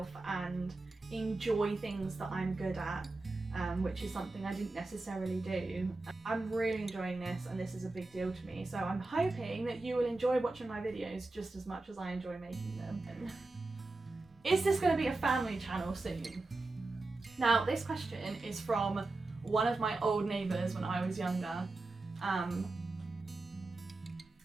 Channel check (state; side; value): quieter; left; 3.2 dB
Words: and enjoy things that I'm good at. which is something I didn't necessarily do. I'm really enjoying this, and this is a big deal to me, so I'm hoping that you will enjoy watching my videos just as much as I enjoy making them. Is this going to be a family channel soon? Now, this question is from one of my old neighbours when I was younger.